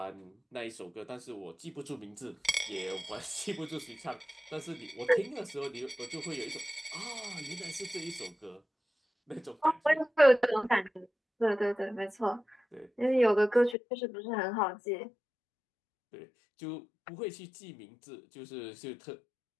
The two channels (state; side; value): drops out; right; at 13.8 s